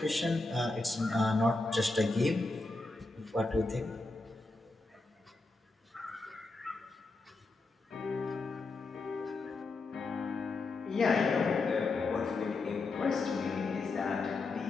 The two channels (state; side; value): quieter; right; 3.4 dB